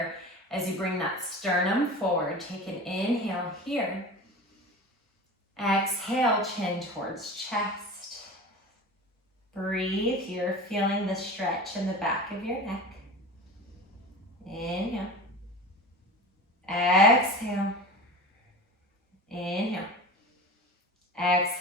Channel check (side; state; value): both; normal; correlation 0.33